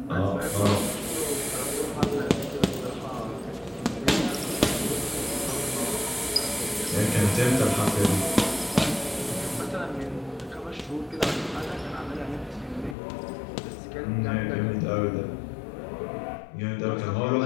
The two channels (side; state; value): right; drops out; at 13.0 s